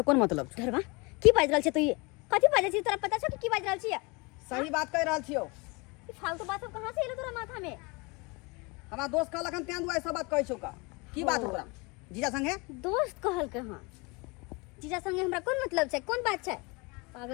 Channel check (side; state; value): right; quieter; 27.9 dB